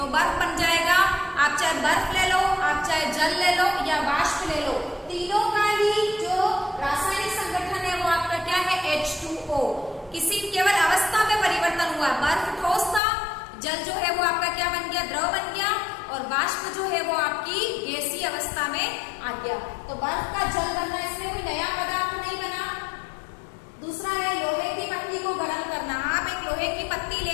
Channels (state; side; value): drops out; right; at 13.0 s